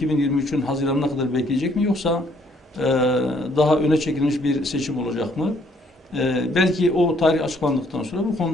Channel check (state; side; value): normal; both; correlation 0.65